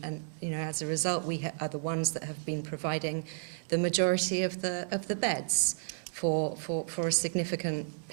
you know, as a result, we are the ones that have been providing the majority of the beds for a significant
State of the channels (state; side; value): silent; left; 56 dB below the other